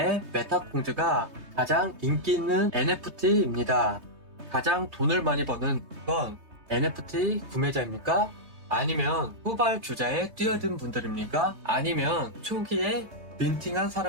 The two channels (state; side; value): late; left; 3.2 ms